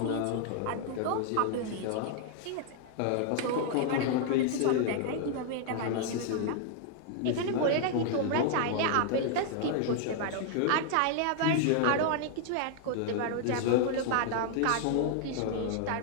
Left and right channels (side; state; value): both; different; correlation 0.00